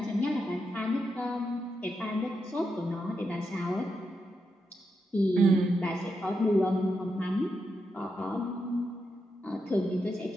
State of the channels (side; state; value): both; normal; correlation 0.84